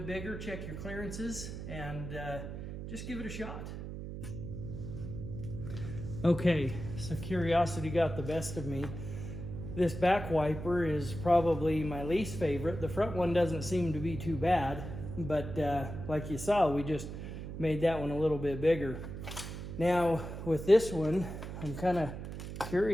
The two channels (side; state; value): right; noise; hum, 8 dB below the sound